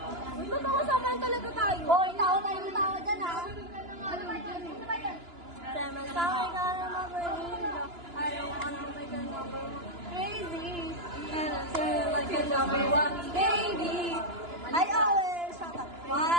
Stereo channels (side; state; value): left; late; 2.9 ms